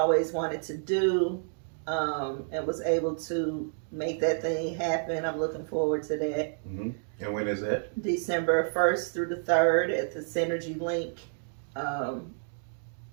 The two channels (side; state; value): left; silent; digital silence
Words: wanted to do, and was able to make that thing happen. I'm looking forward to that. Mm-hmm. And when is that? December 1st through the 3rd at the Synergy Link.